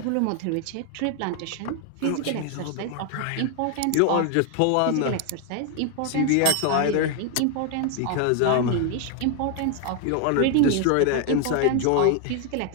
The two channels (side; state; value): both; different; correlation 0.01